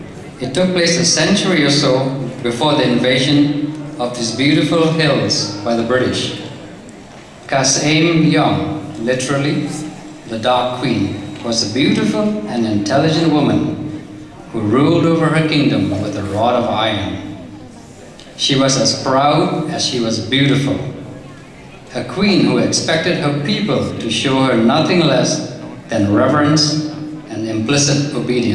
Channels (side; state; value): both; identical; correlation 1.00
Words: It took place a century or so before the invasion of these beautiful hills by the British. Khasi, literally the Dark Queen, was a beautiful and intelligent woman who ruled over her kingdom with a rod of iron. She was as proud as she was beautiful. A queen who expected her people to show her nothing less than reverence and implicit